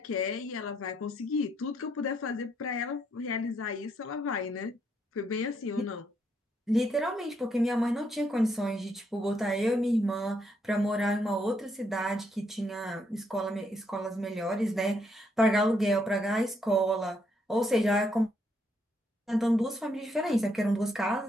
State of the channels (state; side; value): normal; both; correlation 0.75